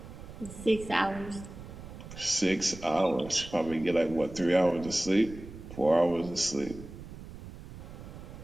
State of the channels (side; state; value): right; noise; rumble, 14 dB below the sound